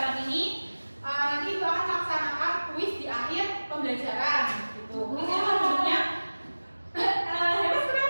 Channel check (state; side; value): inverted; both; correlation -1.00